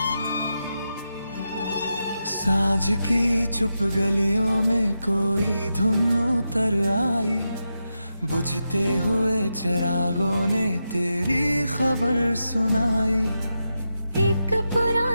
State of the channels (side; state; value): both; inverted; correlation -0.88